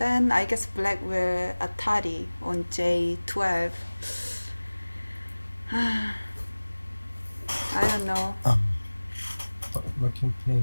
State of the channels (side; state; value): both; inverted; correlation -1.00